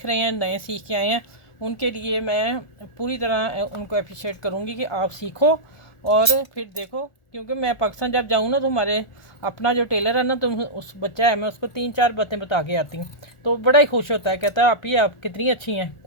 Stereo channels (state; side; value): late; right; 1.4 ms